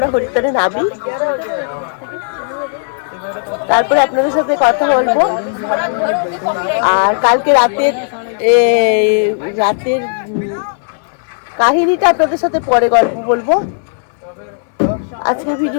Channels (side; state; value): right; silent; digital silence